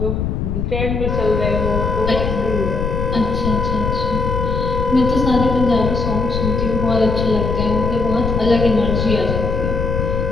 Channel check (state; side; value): noise; left; rumble, 1 dB below the sound